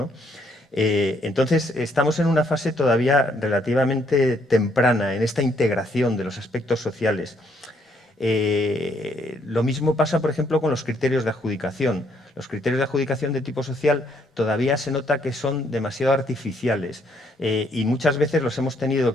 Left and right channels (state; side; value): normal; both; correlation 0.70